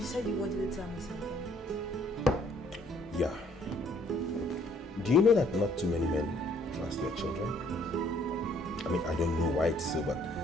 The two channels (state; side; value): normal; both; correlation 0.63